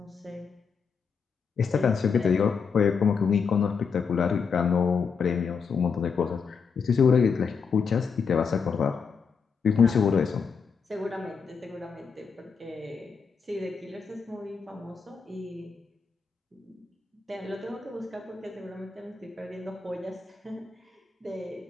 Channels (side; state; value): right; quieter; 5.8 dB